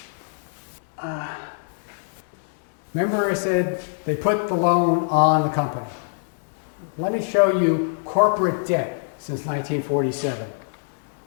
remember I said they put the loan on the company. Let me show you corporate debt since 1947,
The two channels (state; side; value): silent; right; digital silence